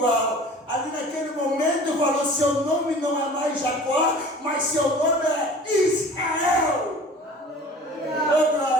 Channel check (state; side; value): normal; both; correlation 0.44